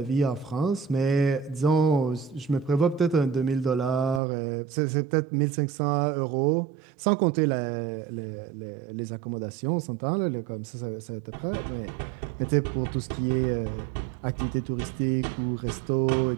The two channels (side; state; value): left; drops out; at 4.2 s